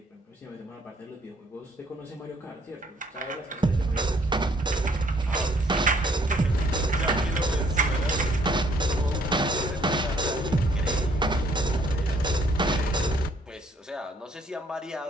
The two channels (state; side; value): normal; both; correlation 0.64